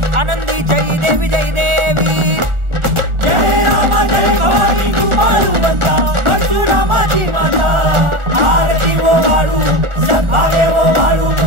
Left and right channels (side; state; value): left; late; 1.4 ms